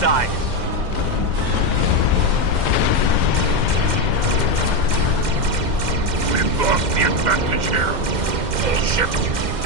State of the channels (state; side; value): late; left; 2.1 ms